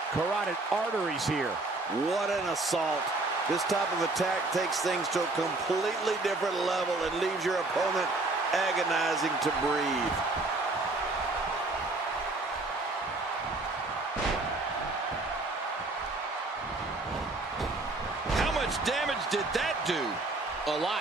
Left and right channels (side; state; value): left; quieter; 3.1 dB